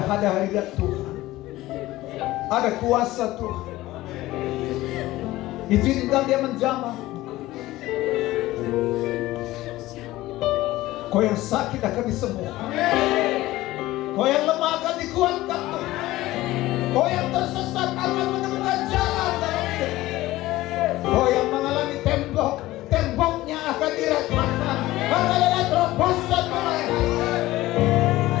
hadirat Tuhan, ada kuasa Tuhan. Izinkan dia menjamah. Kau yang sakit akan disembuhkan. Kau yang lemah akan dikuatkan Tuhan. Kau yang tersesat akan menemukan jalan dalam hidup. Kau yang mengalami temboknya akan diratakan. Akan ada terobosan mulai.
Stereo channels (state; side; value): quieter; right; 17.1 dB